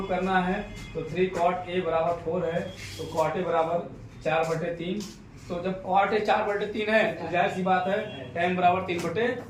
करना है। तो 3 कॉट ए बराबर 4 है तो कॉट ए बराबर 4/3। तो जब कॉट ए 4/3 है तो जाहिर सी बात है tan बराबर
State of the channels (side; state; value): both; identical; correlation 1.00